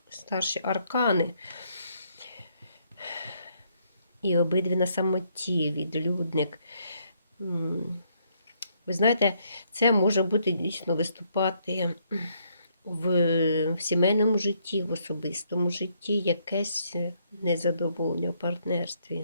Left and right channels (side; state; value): both; inverted; correlation -0.71